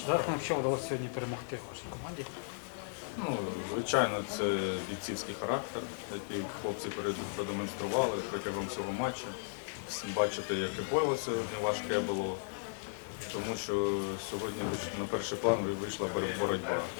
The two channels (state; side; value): silent; right; digital silence